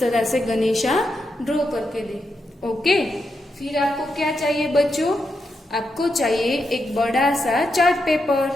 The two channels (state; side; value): normal; both; correlation 0.84